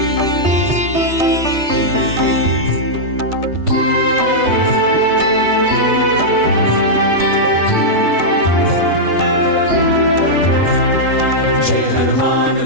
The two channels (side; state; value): left; late; 3.2 ms